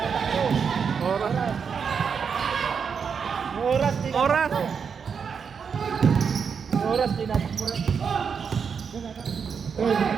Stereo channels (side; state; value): left; quieter; 6.4 dB